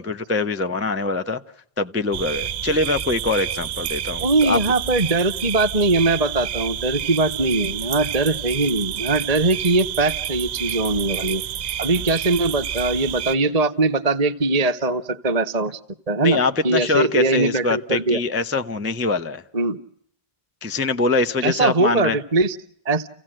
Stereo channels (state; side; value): late; left; 1.9 ms